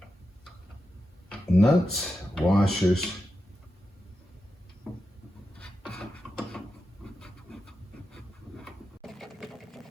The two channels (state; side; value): normal; both; correlation 0.89